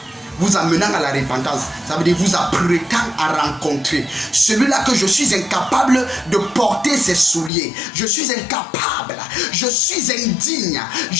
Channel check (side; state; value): right; drops out; at 7.5 s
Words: vous amenant à la repentance. Ça veut dire vous apprêtant à rencontrer celui-là que je suis incapable de porter ses souliers. Je suis incapable, je suis indigne